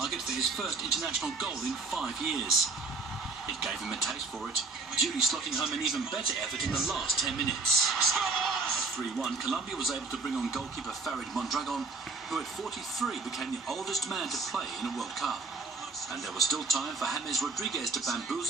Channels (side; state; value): left; quieter; 3.8 dB